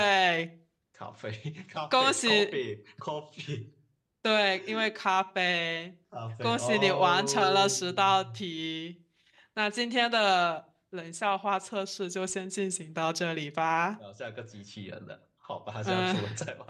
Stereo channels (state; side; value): identical; both; correlation 1.00